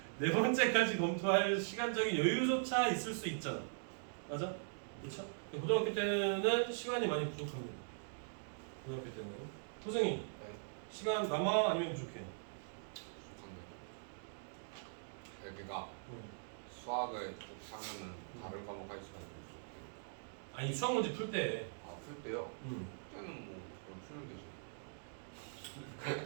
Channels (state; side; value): silent; left; digital silence